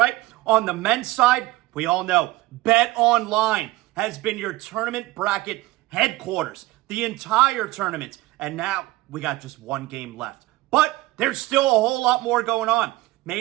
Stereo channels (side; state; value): left; quieter; 18.7 dB